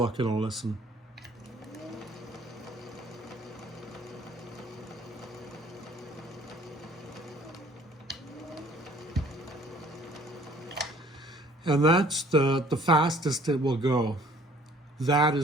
and I'll listen. And that's the fastest it will go. That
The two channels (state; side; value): normal; both; correlation 0.56